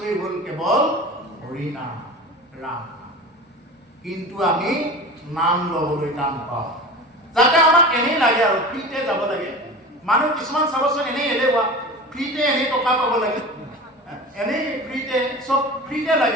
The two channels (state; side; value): normal; both; correlation 0.33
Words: হ'ল কেৱল হৰি নাম, ৰাম নাম। কিন্তু আমি নাম ল'বলৈ টান পাওঁ, যাতে আমাক এনেই লাগে আৰু ফ্ৰীতে যাব লাগে। মানুহ কিছুমান চাবচোন এনেই এলেহুৱা, ফ্ৰীতে এনেই টকা পাব লাগে, এনেই ফ্ৰীতে চব ফ্ৰীতে